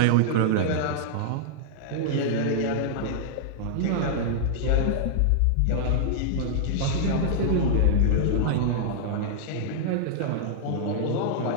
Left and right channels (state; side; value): different; both; correlation -0.01